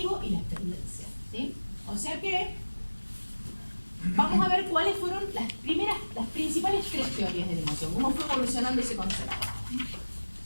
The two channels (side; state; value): both; inverted; correlation -1.00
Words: y la experiencia, ¿sí? O sea que vamos a ver cuáles fueron las principales tres teorías de la emoción, cómo fue evolucionando ese concepto.